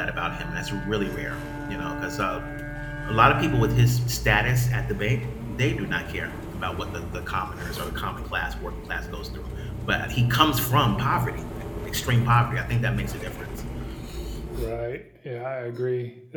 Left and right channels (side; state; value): both; identical; correlation 1.00